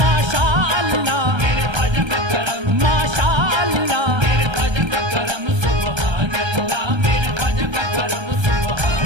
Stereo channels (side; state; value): left; late; 1.3 ms